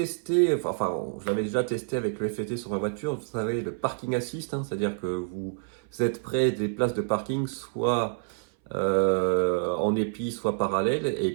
enfin je l'avais déjà testé avec le FET sur ma voiture, vous savez le parking assist, c'est-à-dire que vous êtes près des places de parking, soit en épi, soit parallèle,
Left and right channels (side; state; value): left; silent; 58 dB below the other